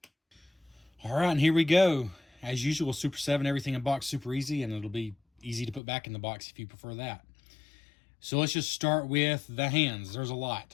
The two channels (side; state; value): right; drops out; at 5.8 s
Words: All right, and here we go. As usual, Super 7, everything in box super easy, and it'll be easy to put back in the box if you prefer that. So let's just start with the hands. There's a